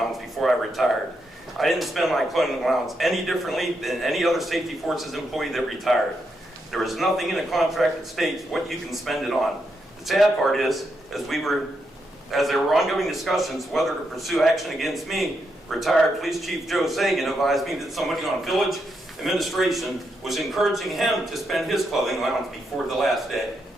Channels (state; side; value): normal; both; correlation 0.81